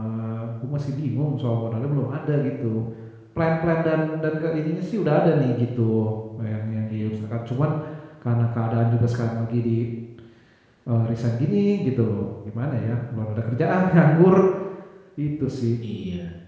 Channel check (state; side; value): identical; both; correlation 1.00